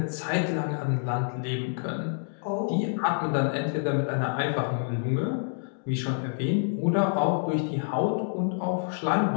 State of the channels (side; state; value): right; silent; digital silence